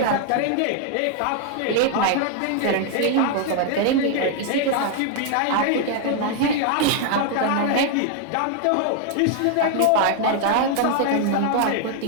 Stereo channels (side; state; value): both; different; correlation 0.00